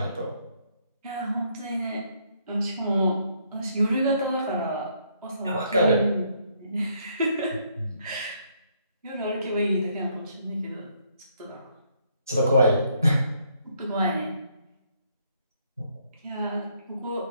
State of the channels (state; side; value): inverted; both; correlation -0.70